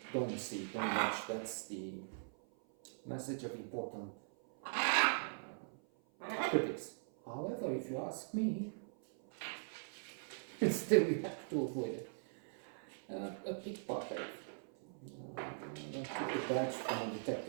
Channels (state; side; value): silent; left; 50 dB below the other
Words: don't watch. That's the message of important critics. However, if you ask me, still we have to avoid it. A pickpocket. I took the badge from